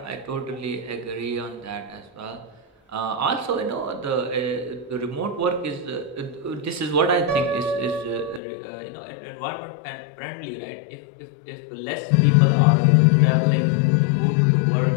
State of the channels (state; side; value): drops out; right; at 8.4 s